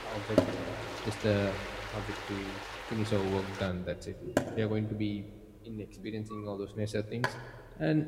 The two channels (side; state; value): both; identical; correlation 1.00